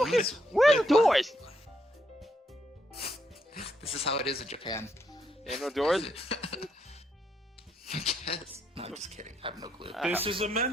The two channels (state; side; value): normal; both; correlation 0.76